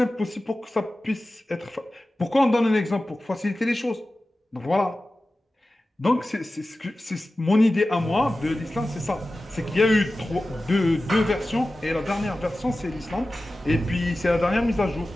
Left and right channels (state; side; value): normal; both; correlation 0.95